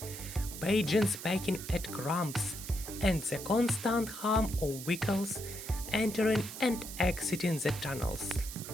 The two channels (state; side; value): noise; right; hiss, 10 dB below the sound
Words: pigeons pecking at crumbs, and the constant hum of vehicles entering and exiting the tunnels.